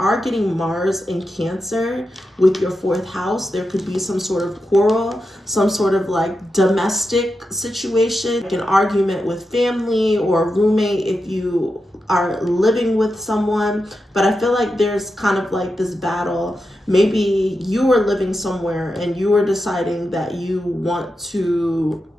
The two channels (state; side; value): normal; both; correlation 0.89